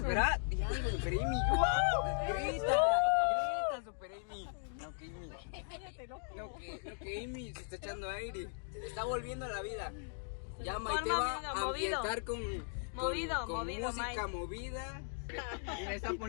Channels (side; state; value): right; silent; digital silence